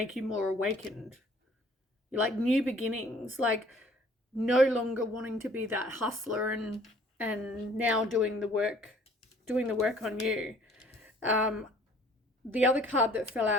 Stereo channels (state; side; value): normal; both; correlation 0.55